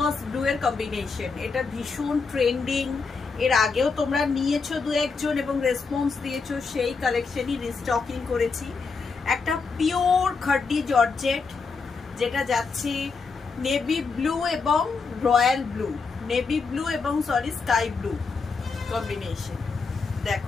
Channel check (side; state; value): right; quieter; 4.7 dB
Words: ব্লু এর কম্বিনেশন। এটা ভীষণ ট্রেন্ডিং, এর আগেও তোমরা নিয়েছো দু একজন এবং রেসপন্স দিয়েছো, সেই কালেকশনই রিস্টকিং করেছি। একটা পিওর খাড্ডি জর্জেট যেটা যাচ্ছে নেভি ব্লু এবং রয়্যাল ব্লু, নেভি ব্লু এবং সরি স্কাই ব্লু কম্বিনেশন।